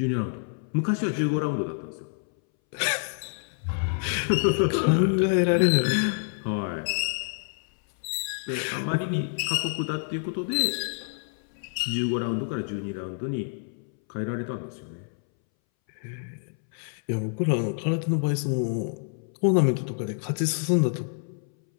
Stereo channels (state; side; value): silent; right; 60 dB below the other